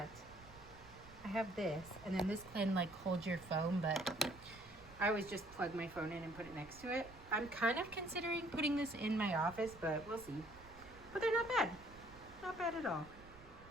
I have this, and then this can like hold your phone, but I always just plug my phone in and put it next to it. I'm kind of considering putting this in my office, but we'll see. But they're not bad. Not bad at all.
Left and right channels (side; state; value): right; noise; rumble, 20 dB below the sound